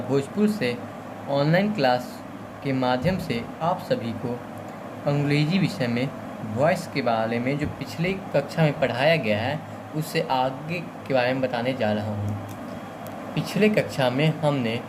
से ऑनलाइन क्लास के माध्यम से आप सभी को अंग्रेजी विषय में वॉइस के बारे में जो पिछले कक्षा में पढ़ाया गया है उससे आगे के बारे में बताने जा रहा हूँ। पिछले कक्षा में हमने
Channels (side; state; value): both; identical; correlation 1.00